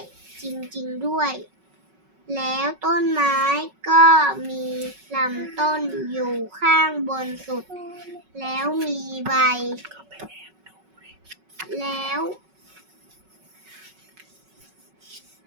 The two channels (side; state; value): left; late; 5.3 ms